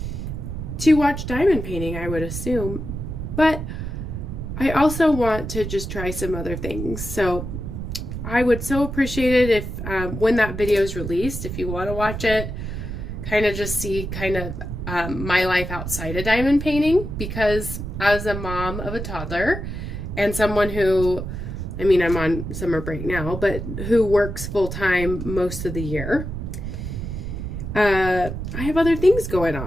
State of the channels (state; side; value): noise; right; rumble, 6 dB below the sound